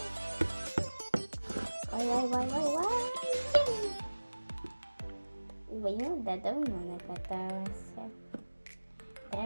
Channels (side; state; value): both; inverted; correlation -1.00